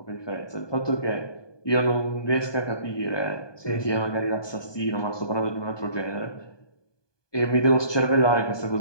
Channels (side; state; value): right; late; 1.2 ms